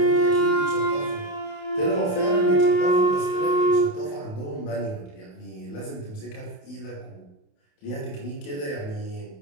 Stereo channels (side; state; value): right; late; 28 ms